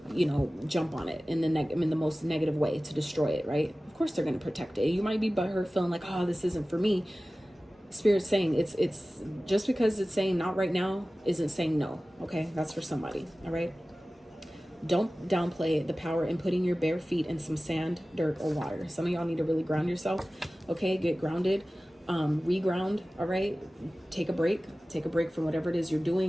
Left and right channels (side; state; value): both; normal; correlation 0.96